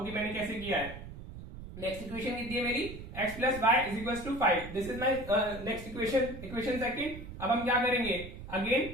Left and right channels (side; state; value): right; noise; rumble, 12 dB below the sound